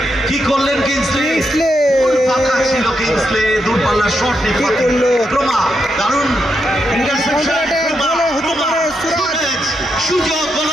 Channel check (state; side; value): normal; both; correlation 0.83